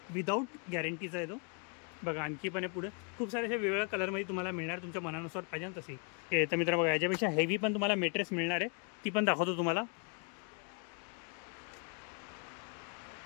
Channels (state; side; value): quieter; right; 37.1 dB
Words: विदाउट गॅरंटीचा आहे तो. बघा आणखी पण आहे पुढे खूप सारे असे वेगवेगळ्या कलरमध्ये तुम्हाला मिळणार तुमच्या मनानुसार पाहिजे तशी. तर मित्रांनो बघा याच्यापेक्षा हेवी पण तुम्हाला मेट्रेस मिळणार आहे. ती पण दाखवतो तुम्हाला.